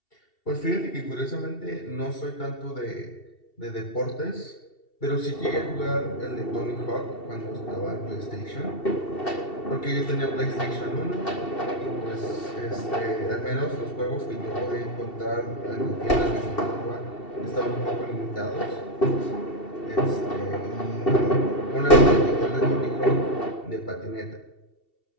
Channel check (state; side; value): late; right; 2.7 ms